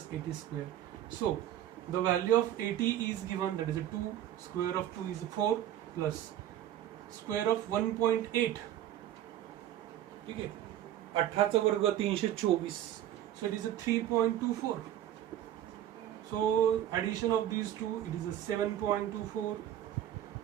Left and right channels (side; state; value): left; quieter; 11.7 dB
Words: AT square. So the value of AT is given, that is a 2, square of 2 is 4, plus square of 1.8. ठीक है, 18 चा वर्ग 324. So it is a 3.24. So addition of these two, it is a 7.24.